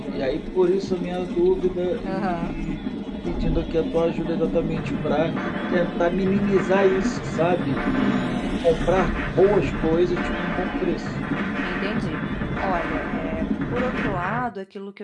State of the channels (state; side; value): identical; both; correlation 1.00